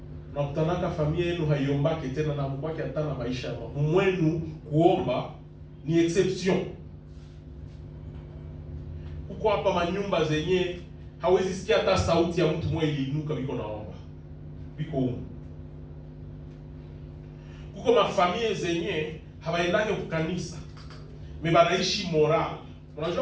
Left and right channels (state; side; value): identical; both; correlation 1.00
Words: na kutanaka familia yenu haiombake tena na mbaki hata na maisha ya mwenu, kuomba ni exception. Huko hapa manyumba zenye hawezi sikia hata sauti ya mtu mmoja iliinuka biko naomba. Biko huko. Huko mafamilia zenye hawaendake kwa kanisa. Mebanaishi moral.